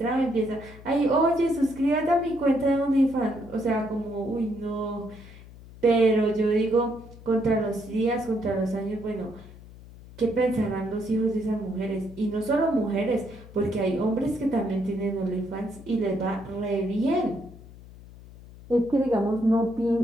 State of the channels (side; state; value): left; noise; hum, 19 dB below the sound